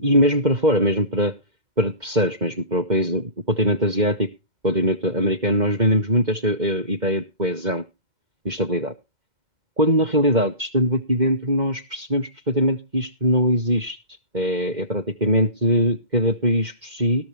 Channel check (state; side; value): late; left; 2.1 ms